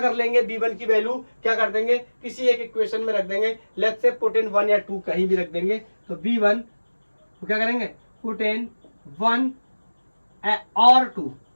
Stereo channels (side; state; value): both; inverted; correlation -1.00